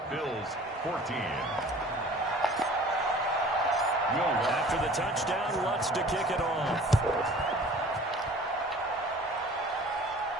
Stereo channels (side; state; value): both; normal; correlation 0.47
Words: Bills 14. After the touchdown, Lutz to kick it off.